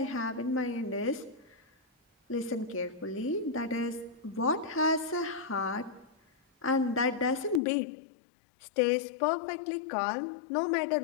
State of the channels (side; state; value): right; drops out; at 7.6 s